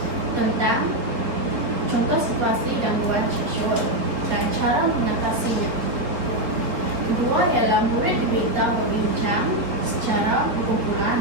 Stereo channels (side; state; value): left; late; 4.4 ms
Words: tentang contoh situasi gangguan seksual dan cara mengatasinya. Kedua ialah murid diminta berbincang secara